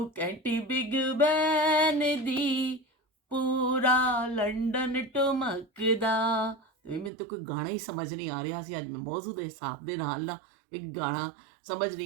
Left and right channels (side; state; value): left; drops out; at 7.1 s